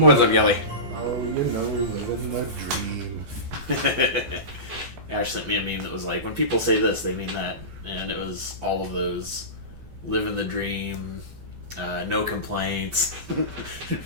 up, Kelley? Oh, living the dream. Ash sent me a meme that was like, when people say this, they mean that. And it was all of those living the dream, no complaints.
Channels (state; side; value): late; left; 15 ms